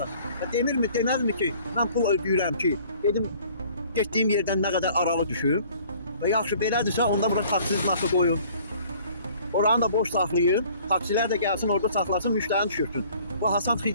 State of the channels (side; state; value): both; inverted; correlation -0.54